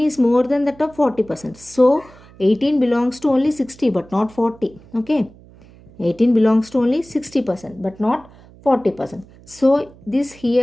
more than that of 40%. So 18 belongs to only 60 but not 40. Okay, 18 belongs to only 60% but not 40%. So this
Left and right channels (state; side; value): noise; right; hum, 24 dB below the sound